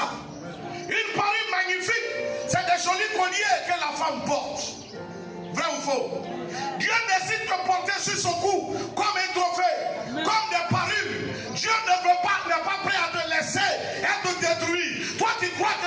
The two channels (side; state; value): both; identical; correlation 1.00